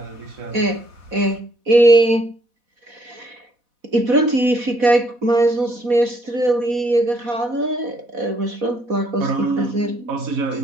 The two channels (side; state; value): left; late; 4.1 ms